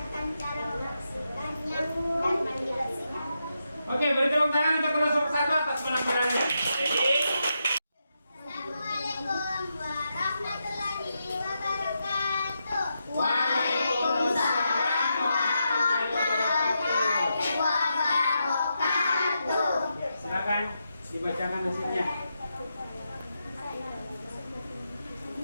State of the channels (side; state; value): both; inverted; correlation -0.85